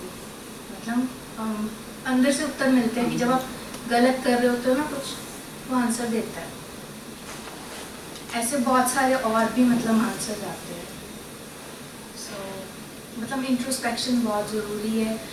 मतलब अंदर से उत्तर मिलते हैं कि जब आप गलत कर रहे होते हो ना कुछ, वो आंसर देता है। ऐसे बहुत सारे और भी मतलब आंसर आते हैं। सो मतलब इंट्रोस्पेक्शन बहुत ज़रूरी है,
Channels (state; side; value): identical; both; correlation 1.00